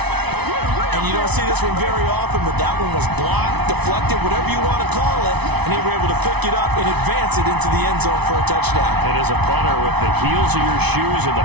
And you don't see this one very often, but that one was blocked, deflected, whatever you want to call it, and they were able to pick it up and advance it into the end zone for a touchdown. And as a punter with the heels of your shoes in the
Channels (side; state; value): left; late; 0.99 ms